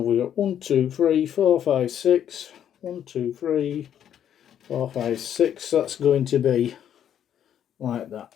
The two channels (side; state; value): right; quieter; 9.7 dB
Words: we got? 1 2 3 4 5 6. 1 2 3 4 5 6. That's going to be like that.